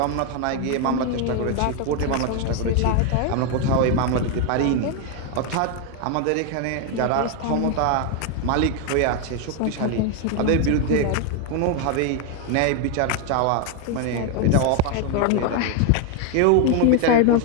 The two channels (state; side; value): different; both; correlation 0.01